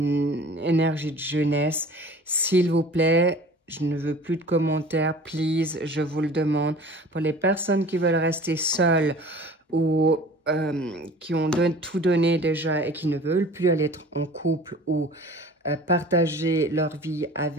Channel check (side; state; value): both; normal; correlation 0.44